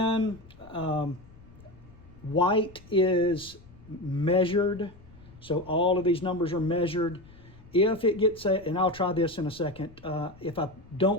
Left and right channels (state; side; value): noise; left; rumble, 22 dB below the sound